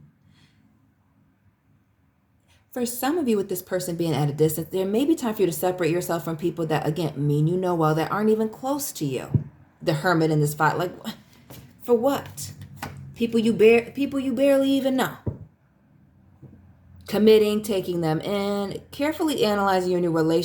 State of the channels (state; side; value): identical; both; correlation 1.00